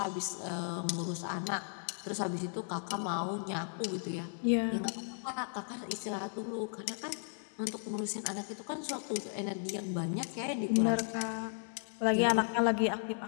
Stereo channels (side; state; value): right; silent; digital silence